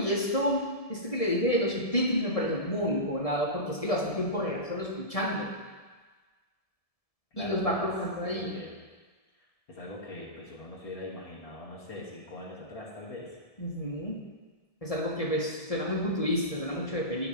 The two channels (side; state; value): right; late; 1.7 ms